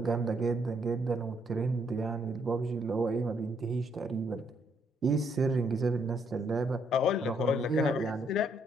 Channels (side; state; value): both; normal; correlation 0.72